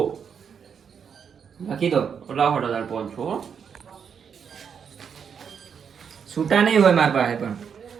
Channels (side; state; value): left; quieter; 7.1 dB